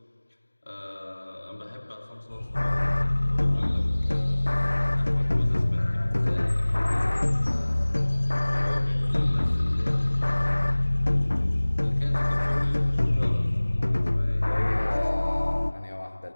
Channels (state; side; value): inverted; both; correlation -1.00